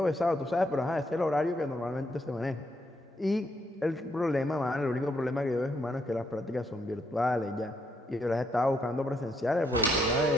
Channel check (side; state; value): both; normal; correlation 0.76